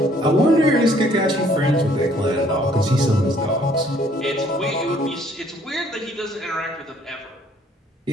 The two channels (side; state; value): both; normal; correlation 0.61